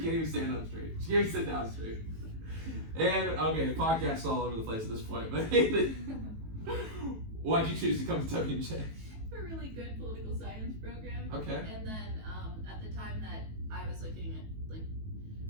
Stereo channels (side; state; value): left; late; 18 ms